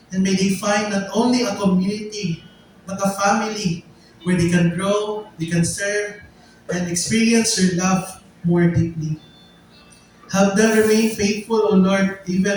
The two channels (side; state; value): both; identical; correlation 1.00